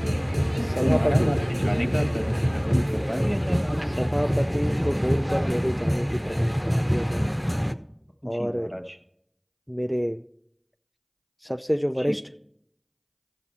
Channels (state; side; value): identical; both; correlation 1.00